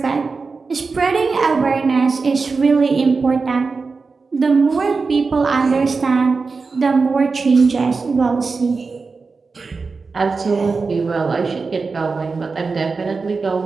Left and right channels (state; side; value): quieter; left; 4.4 dB